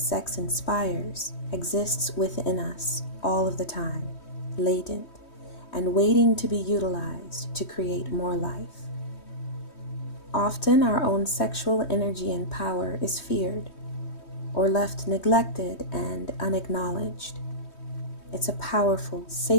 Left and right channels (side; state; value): right; late; 3.2 ms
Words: sex inspires exists within us all of the time, latent, and waiting to be utilized to create more life. Often our own sexual energy and power is feared or left neglected and unacknowledged. It's a powerful,